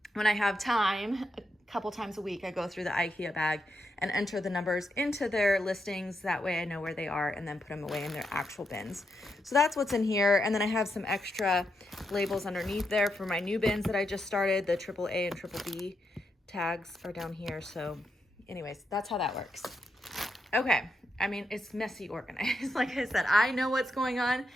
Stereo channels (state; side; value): normal; both; correlation 0.83